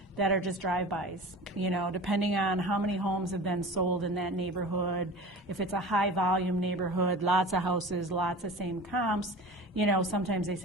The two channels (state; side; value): normal; both; correlation 0.36